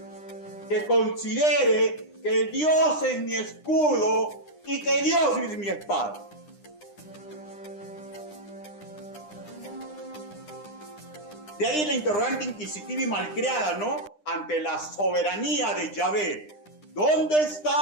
que considere que Dios es mi escudo y que Dios es mi espada. De ahí la interrogante inquisitiva y malcriada, ¿no? Ante la soberanía de Yahvé. ¿Dónde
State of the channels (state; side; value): late; right; 9.9 ms